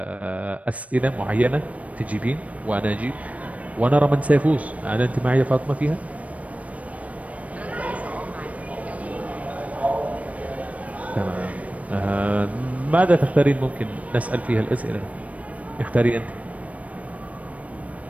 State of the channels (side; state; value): left; late; 0.067 ms